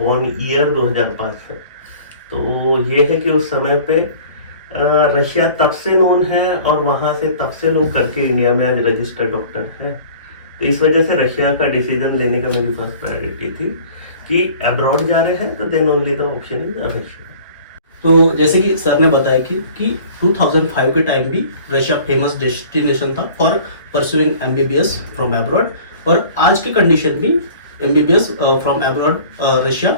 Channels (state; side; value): inverted; both; correlation -0.47